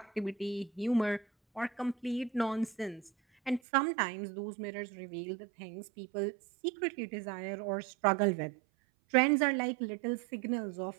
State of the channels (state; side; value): drops out; left; at 3.6 s